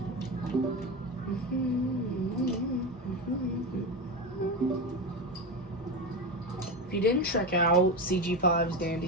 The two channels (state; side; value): normal; both; correlation 0.18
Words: If you didn't check out CG5's